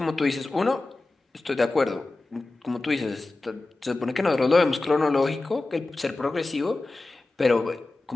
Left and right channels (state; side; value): quieter; right; 3.1 dB